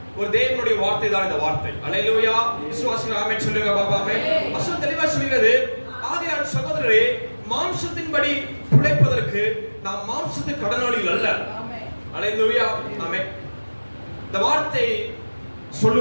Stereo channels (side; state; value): both; inverted; correlation -1.00